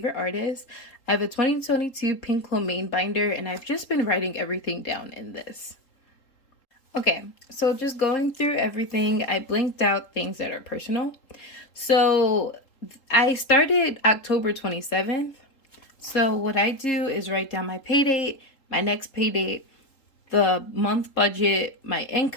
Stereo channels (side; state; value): right; late; 3.8 ms